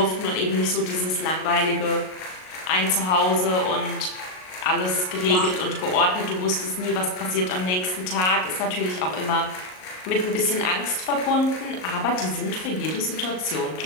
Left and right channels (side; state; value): right; late; 38 ms